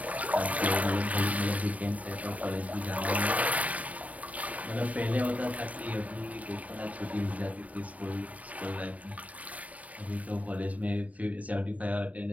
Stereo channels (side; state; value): left; late; 0.070 ms